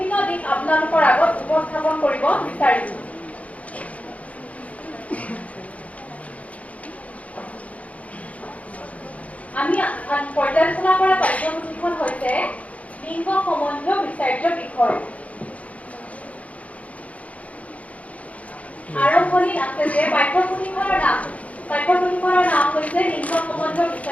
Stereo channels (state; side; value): late; right; 0.067 ms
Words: দিশ আপোনালোকৰ আগত উপস্থাপন কৰিব বিচাৰিছো। আমি পৰ্যালোচনা কৰা পাঠ্যপুথিখন হৈছে লিংগ সম্বন্ধীয় বিচাৰ্য বিষয়। আৰম্ভণিত আছে যে পাঠ্যপুথিখনৰ নাম হৈছে লিংগ সম্বন্ধীয়